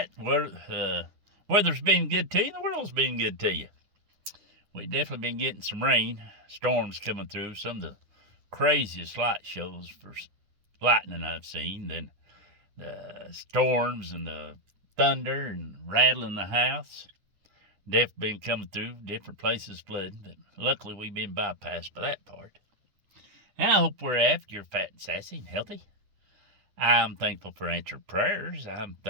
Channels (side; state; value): left; late; 9.8 ms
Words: Weather's been good to you, the world's been good to you. We've definitely been getting some rain, storms coming through, some of the craziest light shows for lightning I've seen. Then the storms and the thunder and rattling the house. Definitely been coming through, different places flooding, but luckily we've been bypassed by that part. And I hope wherever you're fat and sassy and healthy. I'm thankful for answered prayers. I'm